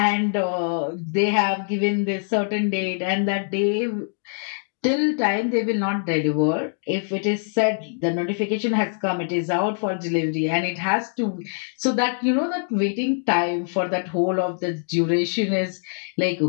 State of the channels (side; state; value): right; silent; 59 dB below the other